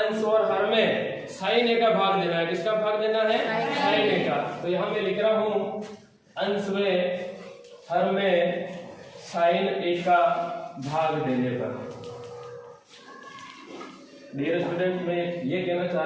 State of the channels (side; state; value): both; identical; correlation 1.00